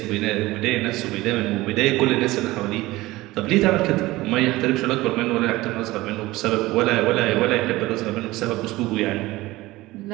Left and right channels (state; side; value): quieter; left; 18.9 dB